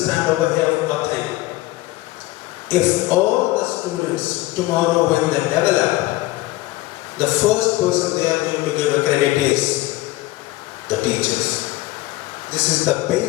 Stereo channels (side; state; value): right; quieter; 18.3 dB